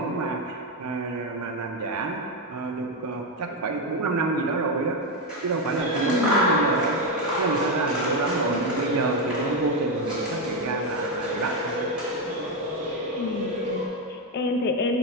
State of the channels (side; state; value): both; normal; correlation 0.07